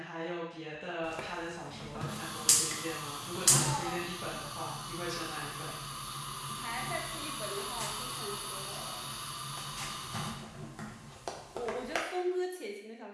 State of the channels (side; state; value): both; identical; correlation 1.00